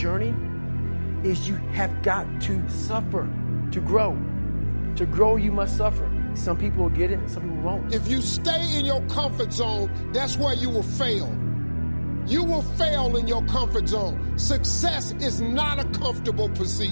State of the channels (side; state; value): both; inverted; correlation -1.00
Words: is you have got to suffer to grow. To grow, you must suffer. Some people will get it and some people won't. If you stay in your comfort zone, that's where you will fail. You will fail in your comfort zone. Success is not a comfortable